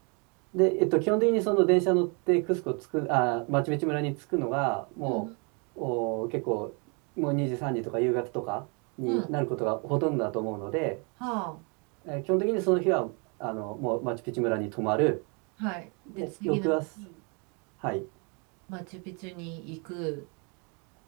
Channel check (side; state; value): left; quieter; 34.1 dB